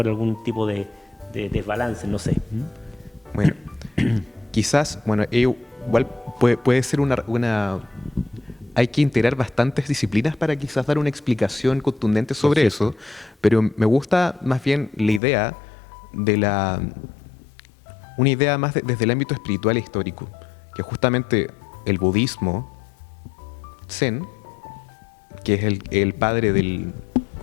algún tipo de desbalance, no sé. Bueno, quizás, igual puede ser hay que integrar bastantes disciplinas para quizás dar una explicación contundente sobre eso, pero me gusta más bien la idea una idea más desde el ámbito espiritual e histórico, que justamente el budismo Zen, que es el padre del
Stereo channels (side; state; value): right; drops out; at 15.2 s